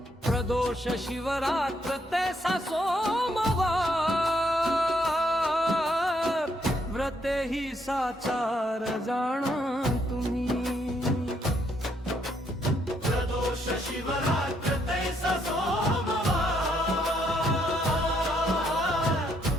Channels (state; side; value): normal; both; correlation 0.73